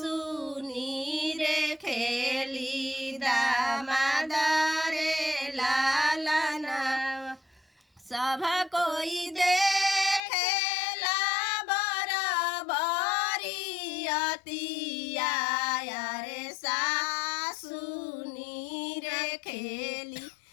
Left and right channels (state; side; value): drops out; right; at 10.2 s